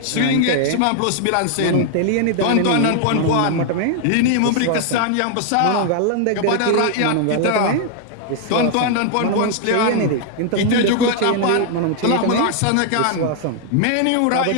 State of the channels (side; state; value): both; different; correlation 0.00